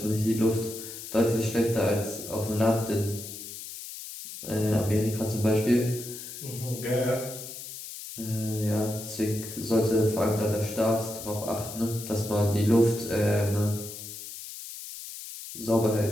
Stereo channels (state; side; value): noise; left; hiss, 11 dB below the sound